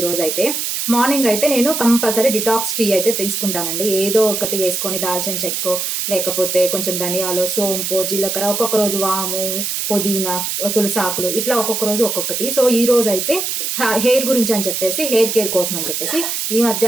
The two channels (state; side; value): noise; right; hiss, 2 dB below the sound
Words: రోజు అయితే మార్నింగ్ అయితే నేను కంపల్సరీ డిటాక్స్ టీ అయితే తీసుకుంటానండి. ఏదో ఒకటి వేసుకొని దాల్చిన చెక్కో లేకపోతే కొంచెం ధనియాలు, సోంపు, జీలకర్ర, ఒక్కొక్క రోజు వాము, పుదీనా, తులసాకులు, ఇట్లా ఒక్కొక్క రోజు ఒక్కొక్కటి. సో ఈ రోజు అయితే హెయిర్ గురించి అని చెప్పేసి, హెయిర్ కేర్ కోసం అని చెప్పేసి ఈ